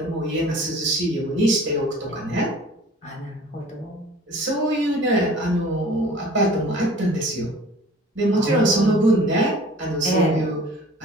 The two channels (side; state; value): both; normal; correlation 0.47